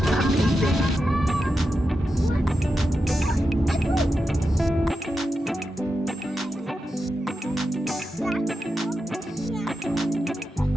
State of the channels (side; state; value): both; normal; correlation 0.89